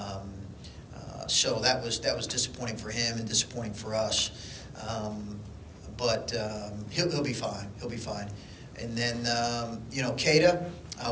So that was disappointing for him and disappointing for us. But he'll be fine. He'll be fine. And then, Keita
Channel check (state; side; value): identical; both; correlation 1.00